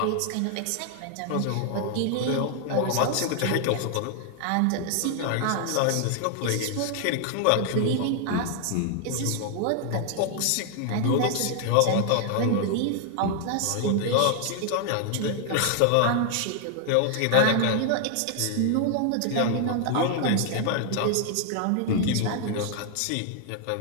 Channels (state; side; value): different; both; correlation 0.00